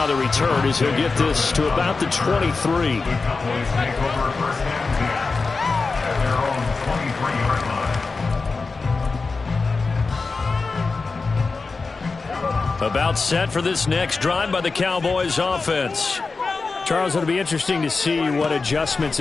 the return as he'll get this to about the 23. The Cowboys take over first and 10 at their own 23-yard line. About set for this next drive by the Cowboys offense. Charles, it'll be interesting to see what adjustments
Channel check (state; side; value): quieter; right; 4.2 dB